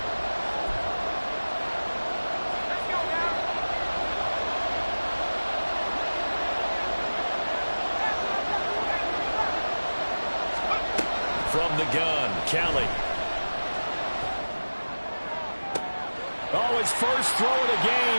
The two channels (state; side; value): inverted; both; correlation -1.00